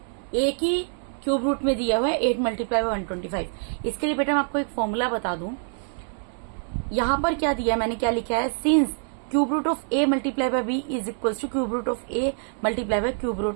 एक ही क्यूब रूट में दिया हुआ है 8 मल्टीप्लाई बाय 125। इसके लिए बेटा मैं आपको एक फॉर्मूला बता दूं। यहां पर क्या दिया है, मैंने क्या लिखा है, since cube root of A multiply by B is equal to cube root of A multiply by cube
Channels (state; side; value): silent; left; 61 dB below the other